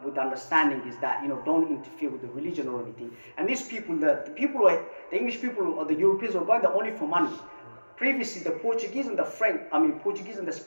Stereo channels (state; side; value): inverted; both; correlation -1.00